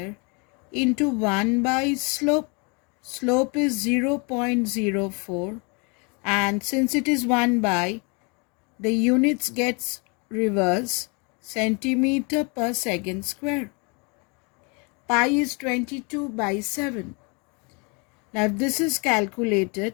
into 1 by slope. Slope is 0.04, and since it is 1 by, the units gets reverse, centimeter per second square. Pi is 22 by 7. Now if this is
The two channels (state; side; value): quieter; right; 32.1 dB